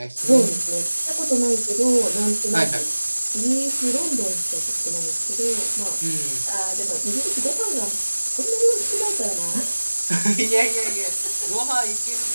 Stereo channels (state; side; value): inverted; both; correlation -1.00